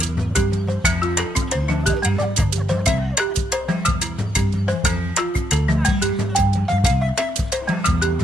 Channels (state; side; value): normal; both; correlation 0.77